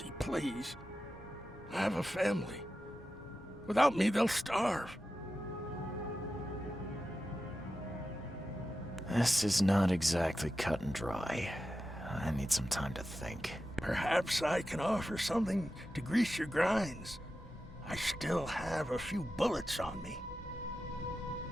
please. I have a family. Without me, they'll starve. This is not exactly cut and dry. I need some time to think. Perhaps I can offer something to grease your grinds. I still have a few bullets on me.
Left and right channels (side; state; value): both; normal; correlation 0.92